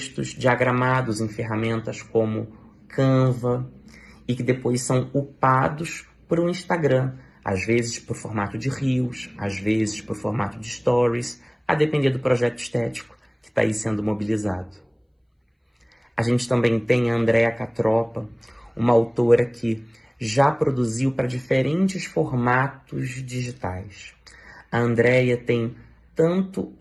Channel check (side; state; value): both; identical; correlation 1.00